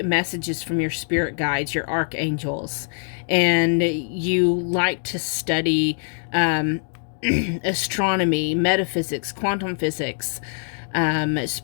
messages from your spirit guides, your archangels, and you like to study astronomy, metaphysics, quantum physics,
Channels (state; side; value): silent; right; digital silence